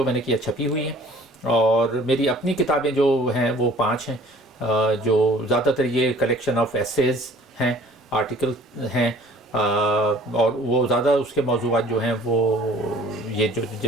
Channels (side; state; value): both; normal; correlation 0.51